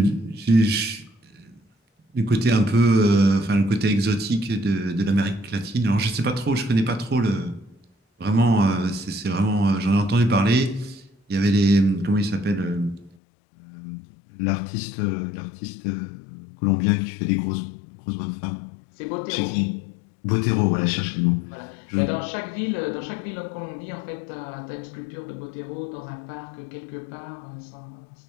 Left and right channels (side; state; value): right; drops out; at 13.2 s